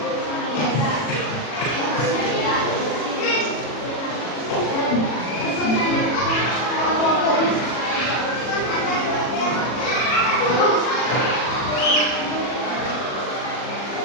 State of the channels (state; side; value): late; right; 40 ms